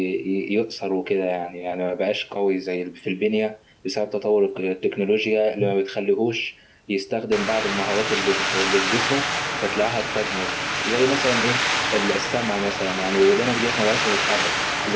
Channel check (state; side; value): identical; both; correlation 1.00